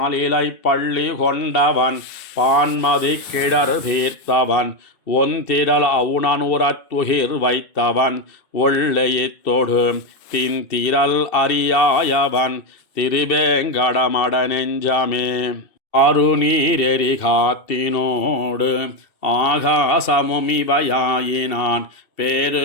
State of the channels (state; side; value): late; right; 2.7 ms